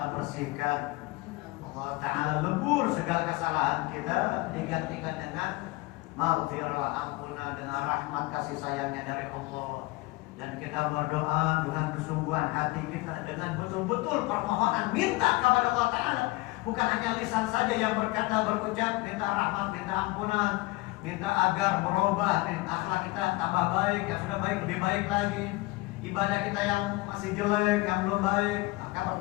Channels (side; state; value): right; quieter; 21.7 dB